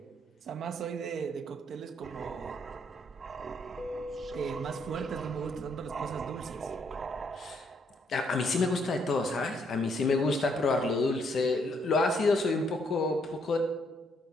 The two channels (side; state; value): both; normal; correlation 0.71